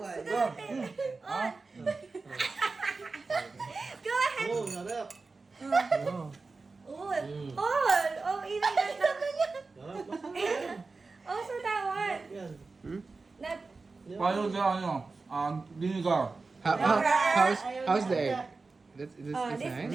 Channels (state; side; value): quieter; left; 3.9 dB